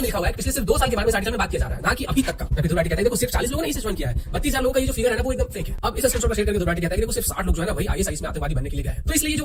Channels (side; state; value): both; identical; correlation 1.00